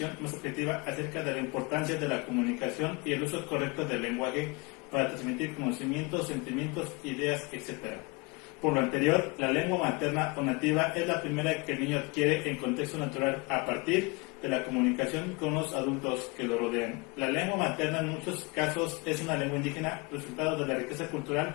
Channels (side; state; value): right; quieter; 27.1 dB